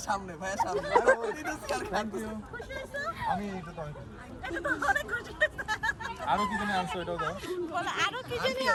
সামনে খুশি হয়েছো? আমি এটা তো অনেক খুশি। এটা তো অনেক খুশি হয়েছে। আরো কি জানি আনছো, এটাও দাও। বলো, আরো কি জানি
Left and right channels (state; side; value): identical; both; correlation 1.00